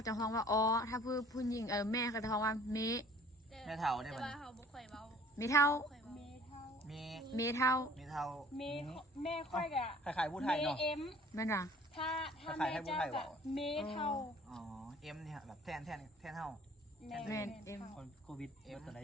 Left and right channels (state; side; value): normal; both; correlation 0.52